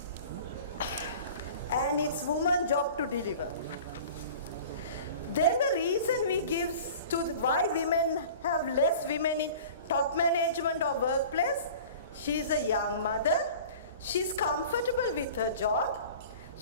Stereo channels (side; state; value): both; inverted; correlation -0.42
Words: And it's woman's job to deliver. Then the reason we give to why women have less women in top management or workplace, she's a young mother, she's comfortable with her job,